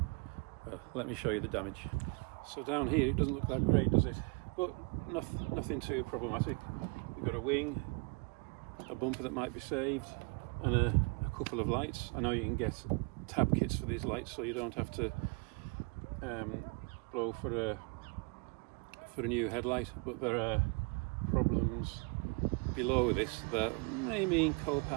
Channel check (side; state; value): left; quieter; 32.0 dB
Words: Well, let me show you the damage. So down here it doesn't look that great, does it? But nothing too problematic. You've got a wing, a bumper that might be saved, and a couple of lights. I know you can get tab kits for these lights, so you don't have to blow for a new headlight, but there are problems below this that may mean